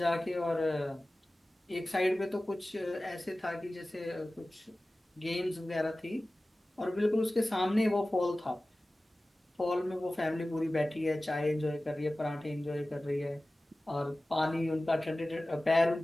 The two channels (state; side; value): normal; both; correlation 0.97